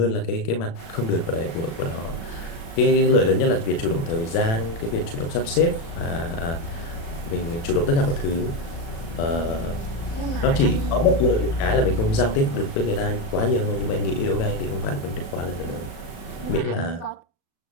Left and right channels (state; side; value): late; right; 36 ms